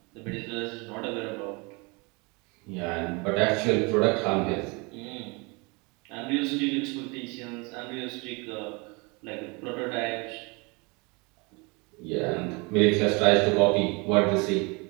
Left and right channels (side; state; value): left; quieter; 28.7 dB